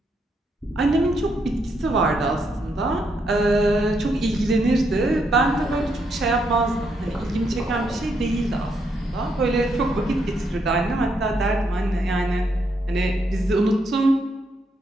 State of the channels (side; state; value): both; normal; correlation 0.77